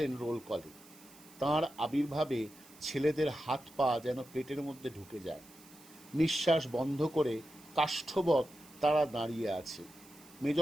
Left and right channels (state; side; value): noise; right; hiss, 23 dB below the sound